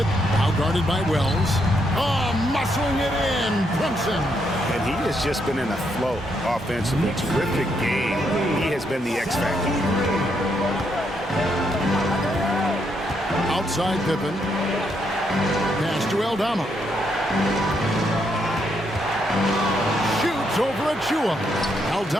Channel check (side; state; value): both; normal; correlation 0.77